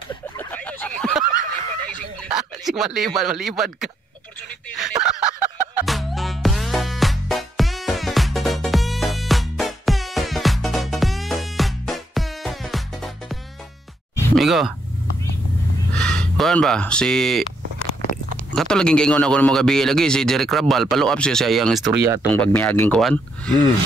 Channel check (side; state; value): both; normal; correlation 0.76